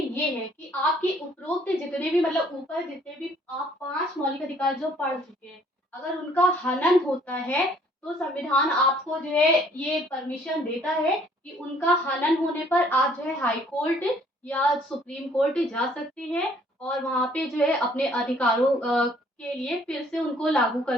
है कि आपके उपरोक्त जितने भी मतलब ऊपर जितने भी आप 5 मौलिक अधिकार जो पढ़ चुके हैं, अगर उनका हनन होता है तो संविधान आपको जो है ये परमिशन देता है कि उनका हनन होने पर आप जो है हाई कोर्ट या सुप्रीम कोर्ट जा सकते हैं और वहाँ पे जो है अपने अधिकारों के लिए फिर से उनको लागू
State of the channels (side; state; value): both; normal; correlation 0.60